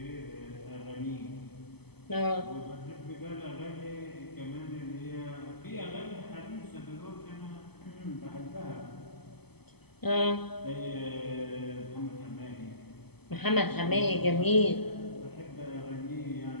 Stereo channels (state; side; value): late; right; 0.97 ms